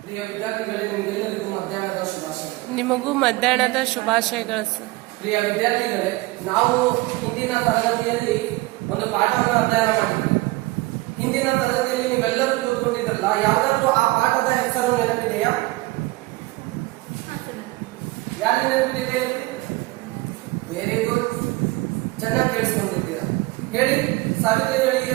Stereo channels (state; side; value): quieter; left; 21.2 dB